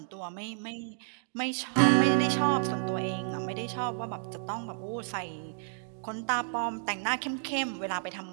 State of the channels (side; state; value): left; silent; digital silence